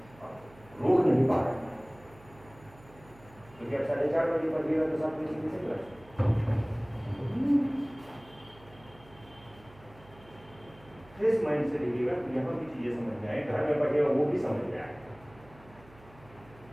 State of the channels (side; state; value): right; noise; hum, 24 dB below the sound